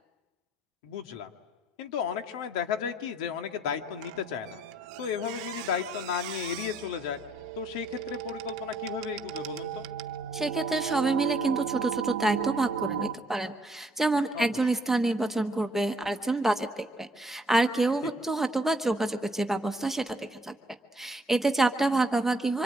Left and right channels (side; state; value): both; normal; correlation 0.65